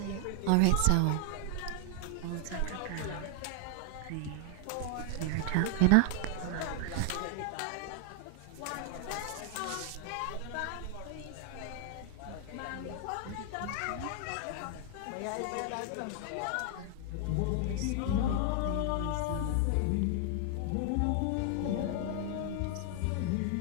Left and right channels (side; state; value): both; different; correlation 0.00